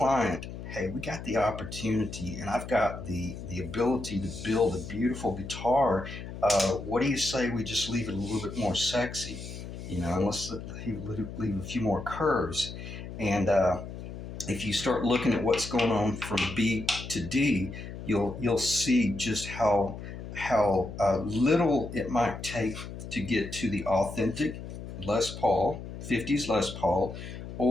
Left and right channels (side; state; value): left; noise; hum, 10 dB below the sound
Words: hey, we got the opportunity, and I've got the ability to build a beautiful guitar. What do you say we just leave it a little bit more sexy? You know, unless he leave a few more curves. And if you start looking at what's going on from B to D, you'll see just how little it might take to get to the authentic Les Paul, 50s Les Paul,